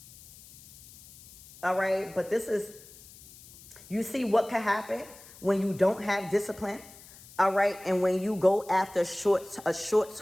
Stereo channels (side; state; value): left; noise; hiss, 21 dB below the sound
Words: All right, but this is, you see what could happen when you don't have discipline. All right, and when you go after a